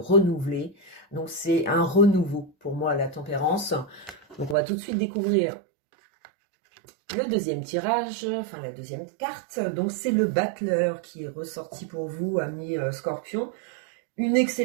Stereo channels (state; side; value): drops out; left; at 4.5 s